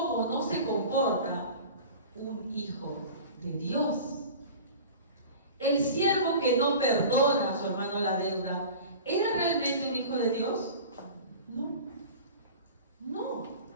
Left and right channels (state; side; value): inverted; both; correlation -0.39